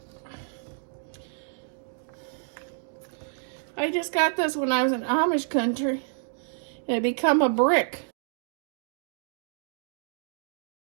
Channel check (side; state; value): left; silent; digital silence